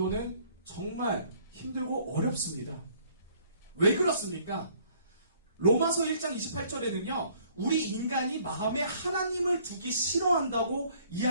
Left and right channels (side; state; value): both; inverted; correlation -0.60